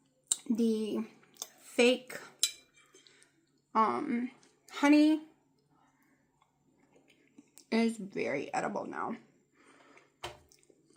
the fake honey is very edible now.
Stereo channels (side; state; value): both; identical; correlation 1.00